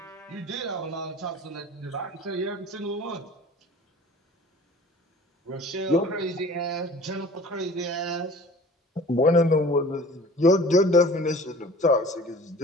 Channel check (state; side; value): normal; both; correlation 0.44